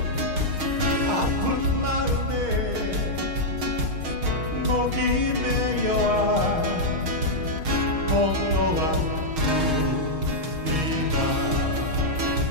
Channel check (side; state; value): left; late; 6.5 ms